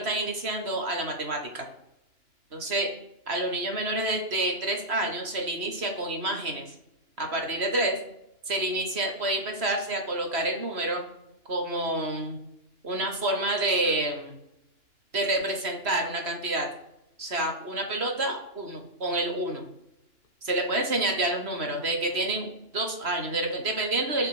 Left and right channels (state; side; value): late; left; 3.0 ms